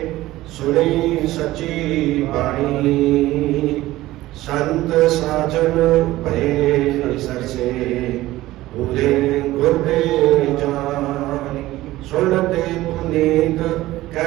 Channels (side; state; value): left; quieter; 16.7 dB